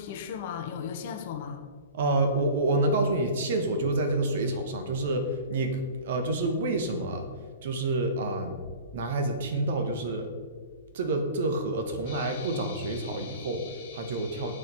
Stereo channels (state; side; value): inverted; both; correlation -0.40